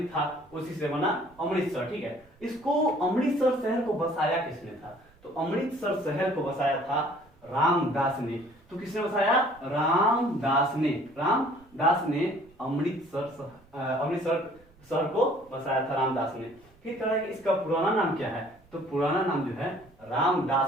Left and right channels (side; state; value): right; noise; rumble, 29 dB below the sound